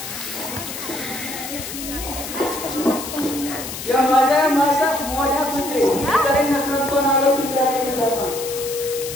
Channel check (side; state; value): left; noise; hiss, 8 dB below the sound